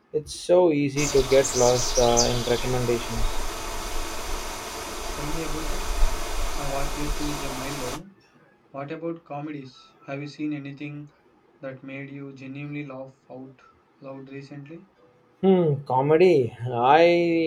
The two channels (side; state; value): both; identical; correlation 1.00